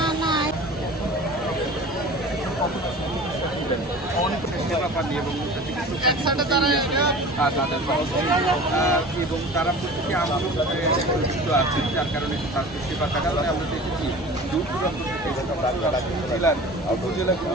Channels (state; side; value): normal; both; correlation 0.40